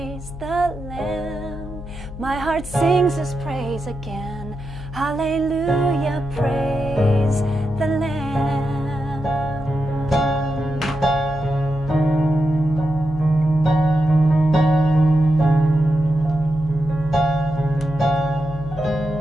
the Lamb. My heart sings His praise again. Hallelujah, praise the Lamb.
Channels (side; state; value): left; noise; hum, 12 dB below the sound